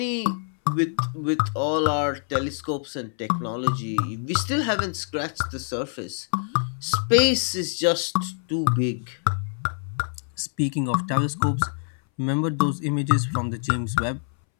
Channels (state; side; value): silent; right; 62 dB below the other